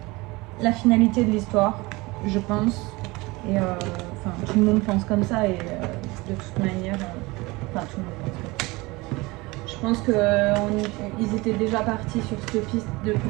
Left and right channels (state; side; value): quieter; left; 23.0 dB